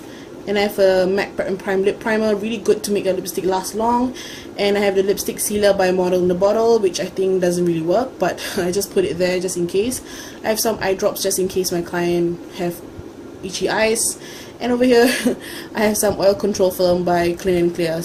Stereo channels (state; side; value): identical; both; correlation 1.00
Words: and I have a MAC Prep and Prime Lip Primer, really good to make your lipstick last long. And I have the lipstick sealer by Model in the Bottle, which I think doesn't really work, but I just put it there just in case. I have some eye drops just in case my client have itchy eyes. And over here I have some oil control film by Clean and Clear.